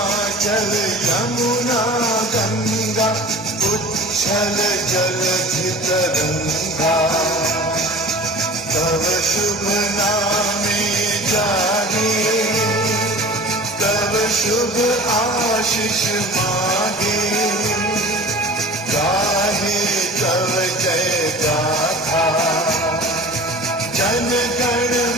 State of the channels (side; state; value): both; normal; correlation 0.39